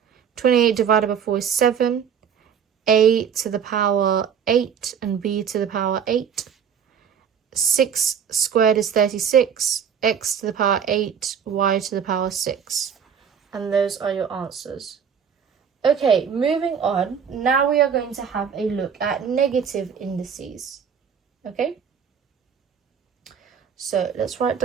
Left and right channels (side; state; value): left; quieter; 7.5 dB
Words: 28 divided by 4 is 7. A to the power 8 and b to the power 8. 6 squared is 36. X to the power 8, y to the power 6. And those are your answers. Okay, moving on. Now we are going to have a look at negative indices. Okay? So let's write